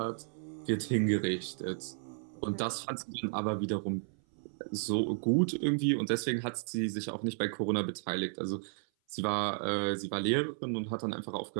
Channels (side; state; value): left; silent; 55 dB below the other